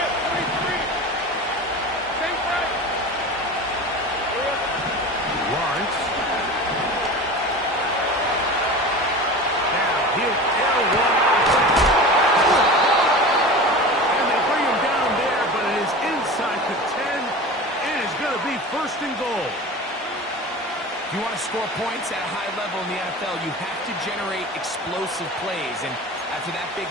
43. Stay right. Lawrence. Now he'll air one out. And they bring him down there, but it is inside the 10. It is going to be 1st and goal. If you want to score points at a high level in the NFL, you have to generate explosive plays. And after that big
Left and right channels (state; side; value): normal; both; correlation 0.33